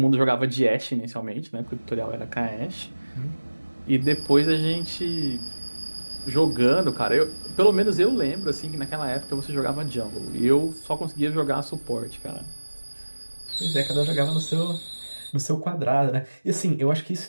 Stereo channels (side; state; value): both; inverted; correlation -1.00